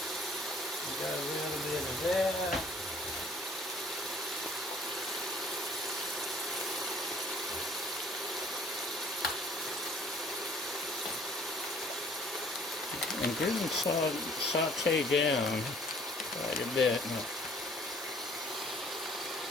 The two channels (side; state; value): both; normal; correlation 0.55